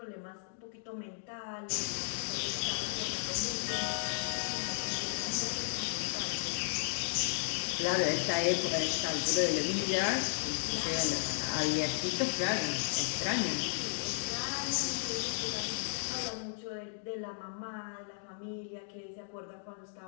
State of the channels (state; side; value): silent; right; digital silence